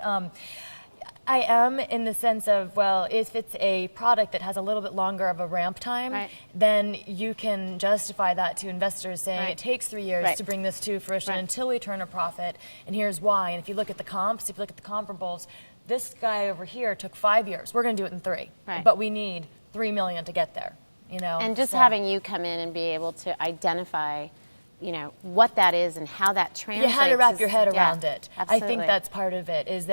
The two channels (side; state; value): both; inverted; correlation -1.00